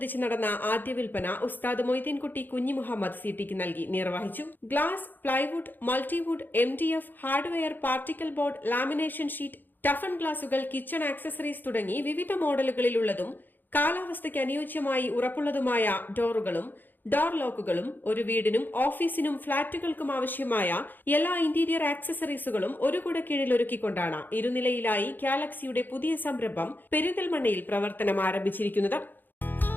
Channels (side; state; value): right; late; 0.090 ms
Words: നടന്ന ആദ്യ വിൽപ്പന ഉസ്താദ് മൊയ്തീൻകുട്ടി കുഞ്ഞി മുഹമ്മദ് CTക്ക് നൽകി നിർവഹിച്ചു. Glass, plywood, multiwood, MDF, hardware, particle board, lamination sheet, toughen ഗ്ലാസുകൾ, കിച്ചൺ ആക്സസറീസ് തുടങ്ങി വിവിധ മോഡലുകളിലുള്ളതും കാലാവസ്ഥയ്ക്ക് അനുയോജ്യമായി ഉറപ്പുള്ളതുമായ ഡോറുകളും ഡോർ ലോക്കുകളും ഒരു വീടിനും ഓഫീസിനും ഫ്ളാറ്റുകൾക്കും ആവശ്യമായ എല്ലാ ഇന്റീരിയർ ആക്സസറീസുകളും ഒരു കുടക്കീഴിൽ ഒരുക്കിക്കൊണ്ടാണ് ഇരുനിലയിലായി ഗാലക്സിയുടെ പുതിയ സംരംഭം പെരിന്തൽമണ്ണയിൽ പ്രവർത്തനം ആരംഭിച്ചിരിക്കുന്നത്.